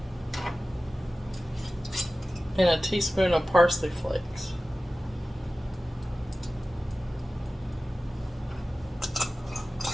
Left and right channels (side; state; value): both; normal; correlation 0.96